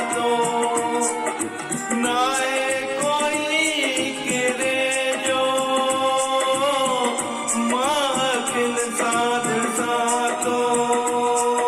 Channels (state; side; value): identical; both; correlation 1.00